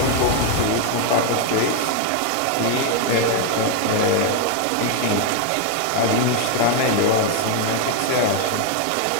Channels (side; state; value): both; different; correlation 0.01